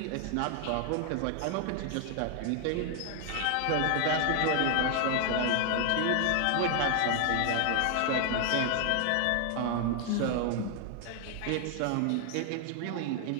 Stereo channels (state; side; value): different; both; correlation 0.00